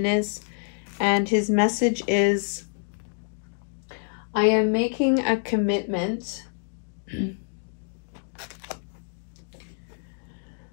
is. And his message is, I am making a commitment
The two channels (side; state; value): right; silent; digital silence